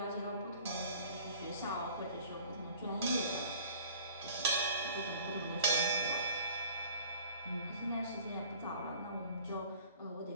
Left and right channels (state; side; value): inverted; both; correlation -0.49